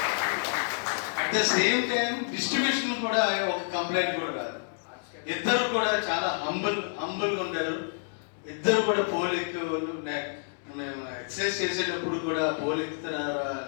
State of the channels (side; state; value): right; silent; digital silence